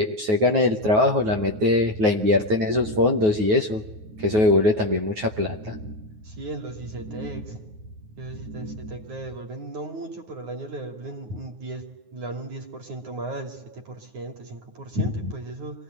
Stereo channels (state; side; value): late; left; 9.4 ms